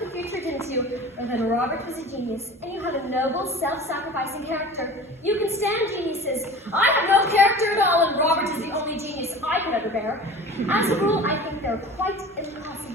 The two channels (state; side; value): normal; both; correlation 0.39